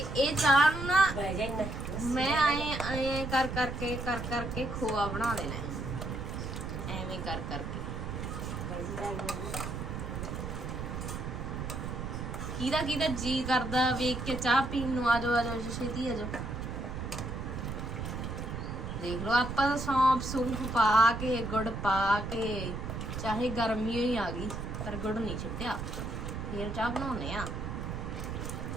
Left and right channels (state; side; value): noise; right; rumble, 5 dB below the sound